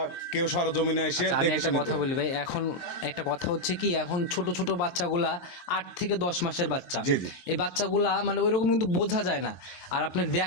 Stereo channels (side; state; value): right; late; 23 ms